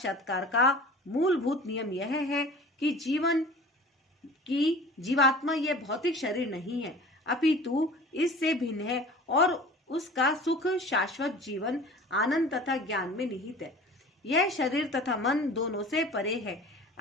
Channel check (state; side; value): normal; both; correlation 0.42